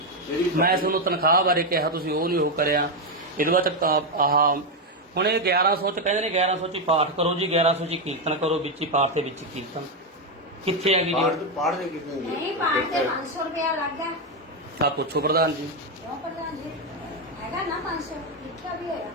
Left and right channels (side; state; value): both; normal; correlation 0.06